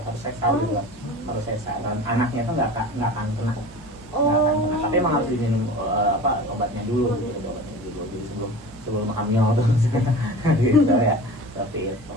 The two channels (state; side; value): normal; both; correlation 0.36